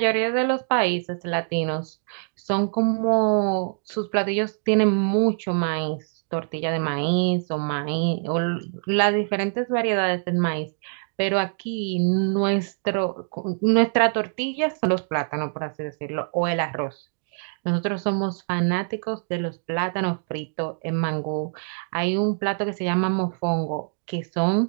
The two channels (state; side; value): silent; left; digital silence